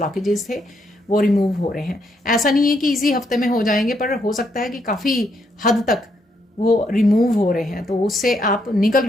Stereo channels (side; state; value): both; normal; correlation 0.76